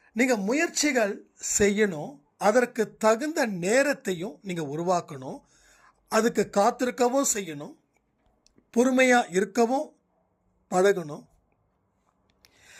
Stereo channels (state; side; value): identical; both; correlation 1.00